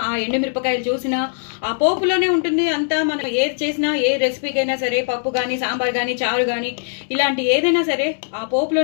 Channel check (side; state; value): right; silent; digital silence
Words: ఆ ఎండుమిరపకాయలు చూసినా, ఆ పోపులోనే ఉంటుంది అంతా. మనం ఏది చేసినా, ఏ రెసిపీకైనా సరే, పప్పు గానీ, సాంబార్ గానీ, చారు గానీ, ఇలాంటి ఏదైనా సరే ఆ